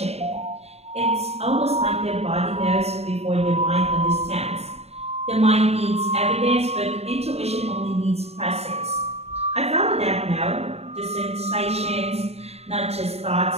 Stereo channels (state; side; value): late; left; 0.30 ms